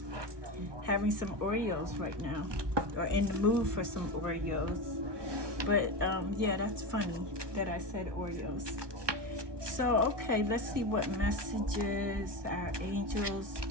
having some Oreos right now, or in the mood for some Oreos. But yeah, that's funny that I said Oreos. So, okay, let's see what messages our angels,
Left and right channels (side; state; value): left; late; 1.2 ms